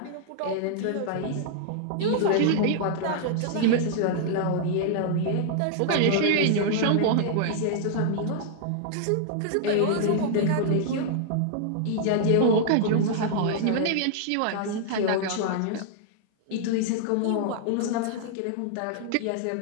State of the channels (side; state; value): both; different; correlation -0.01